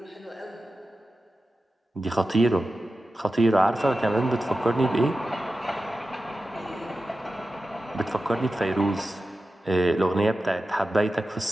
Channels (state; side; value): normal; both; correlation 0.93